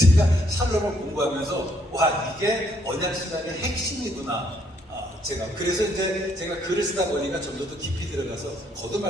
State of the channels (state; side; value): normal; both; correlation 0.70